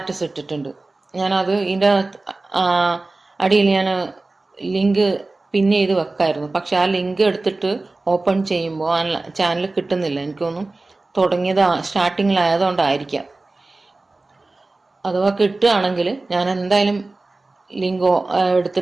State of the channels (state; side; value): quieter; left; 3.2 dB